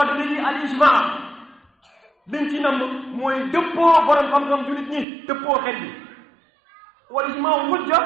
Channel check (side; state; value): left; drops out; at 5.1 s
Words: li al ijmaa liñ ci nam mooy dëppoo borom xam-xam jullit ñi dëppoo xel bi wal ijmaa hujja